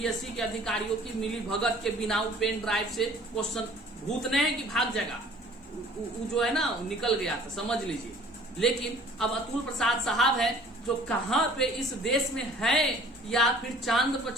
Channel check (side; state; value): both; normal; correlation 0.51